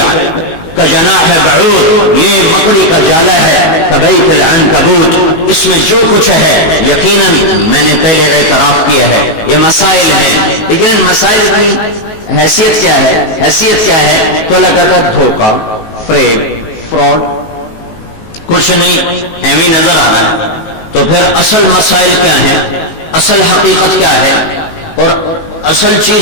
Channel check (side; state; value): right; late; 19 ms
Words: کجناح بعوض، یہ مکڑی کا جالا ہے، کبیت العنکبوت، اس میں جو کچھ ہے یقیناً میں نے پہلے اعتراف کیا ہے یہ مسائل ہیں، لیکن ان مسائل کی حیثیت کیا ہے؟ حیثیت کیا ہے؟ تو اللہ کہتا ہے دھوکہ، فریب، فراڈ، کچھ نہیں، ایویں نظر آ رہا ہے۔ تو پھر اصل مسائل کیا ہیں؟ اصل حقیقت کیا ہے؟ اور اصل